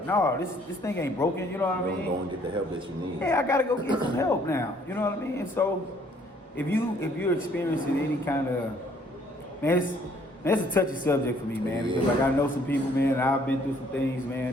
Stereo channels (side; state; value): both; normal; correlation 0.62